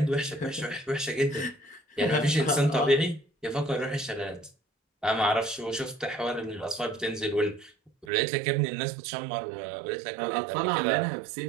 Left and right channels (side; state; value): left; drops out; at 8.1 s